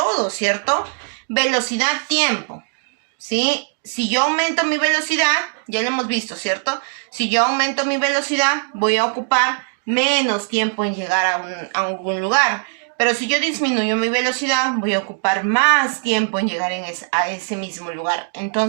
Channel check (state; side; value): silent; left; 66 dB below the other